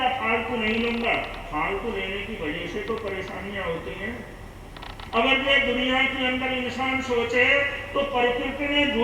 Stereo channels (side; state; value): both; identical; correlation 1.00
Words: फालतू नहीं लूंगा। फालतू लेने की वजह से तो परेशानियां होती हैं। अगर ये दुनिया के अंदर इंसान सोचे तो प्रकृति ने